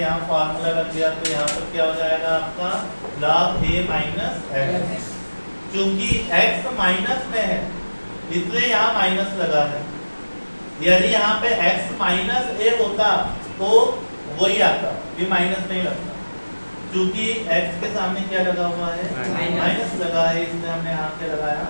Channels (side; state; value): both; inverted; correlation -1.00